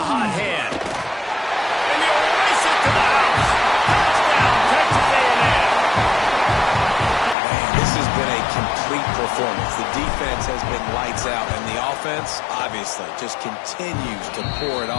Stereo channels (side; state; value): right; drops out; at 7.4 s